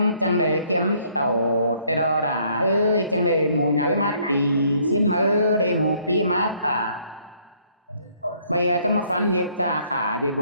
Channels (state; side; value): inverted; both; correlation -0.65